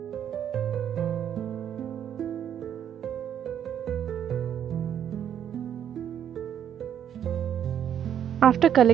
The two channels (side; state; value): left; quieter; 9.4 dB